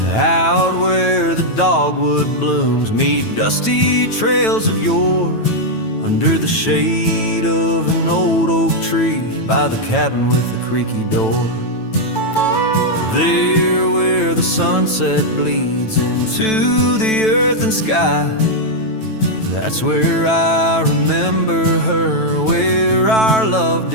Out where the dogwood blooms meet dusty trails of yore, under the shade of an old oak tree by the cabin with the creaky door. There where the sunset bleeds into the earth and sky, that's where I remember her, where our love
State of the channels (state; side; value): late; right; 9.1 ms